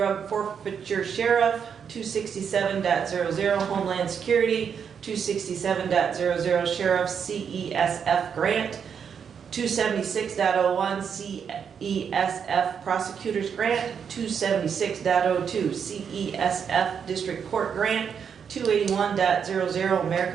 Forfeiture Sheriff, 267.00 Homeland Security, 267.00 Sheriff CESF Grant, 276.01 CESF Prosecutors Grant, 276.02 CESF District Court Grant, 281.00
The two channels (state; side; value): quieter; left; 7.2 dB